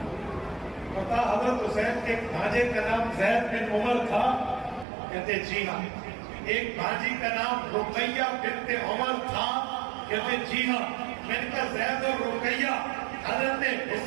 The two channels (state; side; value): drops out; left; at 4.9 s